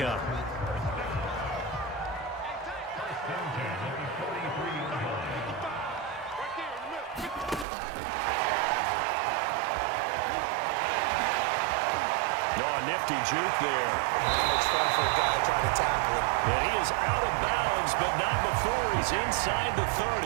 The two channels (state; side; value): drops out; left; at 7.7 s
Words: Nifty juke there. Not much fun for a guy trying to tackle it. And he is out of bounds, but not before he's inside the